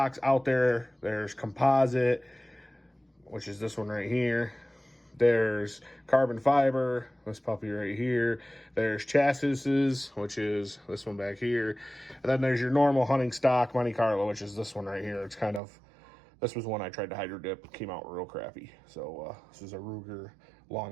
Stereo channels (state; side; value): drops out; left; at 15.6 s